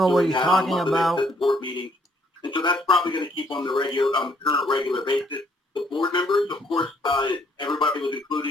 what he's talking about. Board meetings, and so that's probably going to keep on the current regular basis. The board members, of course, everybody was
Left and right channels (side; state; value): both; normal; correlation 0.67